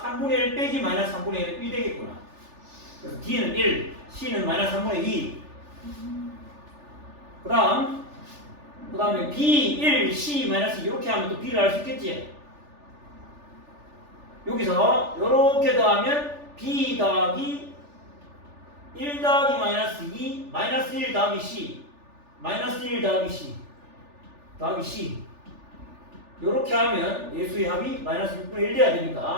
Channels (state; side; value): late; left; 3.4 ms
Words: 3분의 1 빼기 마이너스 3분의 1은 1 되겠구나. 그래서 D는 1, C는 마이너스 3분의 2. 그 다음에 B, 1, C, 마이너스 이렇게 하면 또 B를 알 수 있겠지? 여기서 이렇게 더하면 B 더하기 1 더하기 마이너스 2, 마이너스 1 더하기 C, 마이너스 1 더하기 C, 더하기 C. 요렇게 하면 예수의 합이 마이너스 6분의 1 돼야